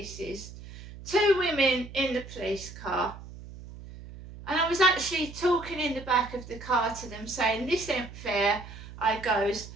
2 women in the police car. And I was actually talking in the back of the car to them saying, this ain't fair. I goes,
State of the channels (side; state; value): right; noise; hum, 14 dB below the sound